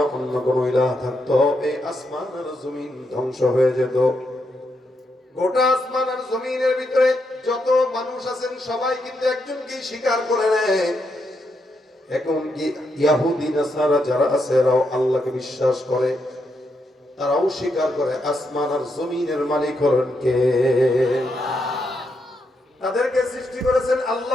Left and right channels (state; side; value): normal; both; correlation 0.81